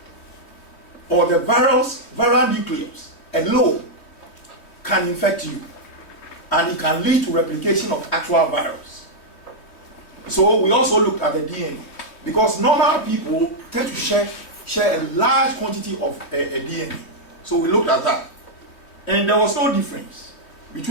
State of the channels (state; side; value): late; right; 3.1 ms